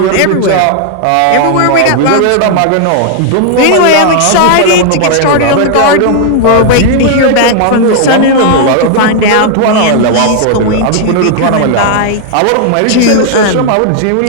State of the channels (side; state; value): both; different; correlation 0.00